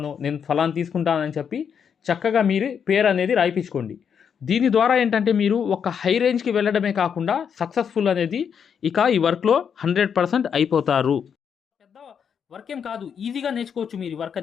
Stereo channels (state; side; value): quieter; right; 7.3 dB